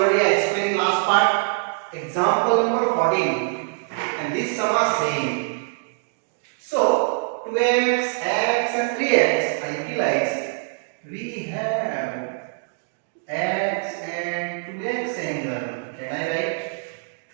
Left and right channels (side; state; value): left; silent; digital silence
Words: I explained in last part. Example number 14. And this sum are same. So 2x, x and 3x I utilize. We have x and 2x angle. Can I write